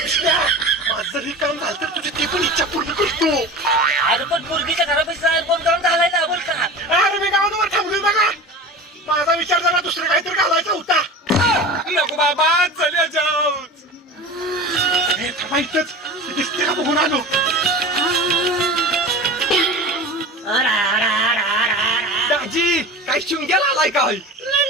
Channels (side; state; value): both; normal; correlation 0.33